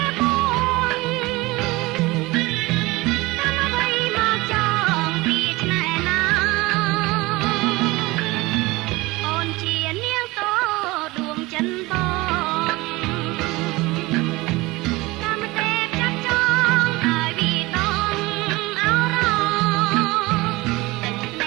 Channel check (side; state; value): left; quieter; 21.6 dB